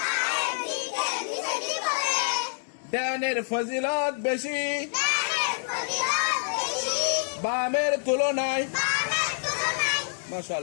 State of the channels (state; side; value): silent; right; 60 dB below the other